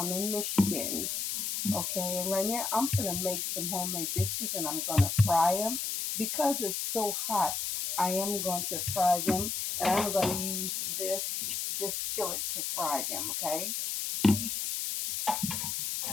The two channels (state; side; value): noise; left; hiss, 2 dB below the sound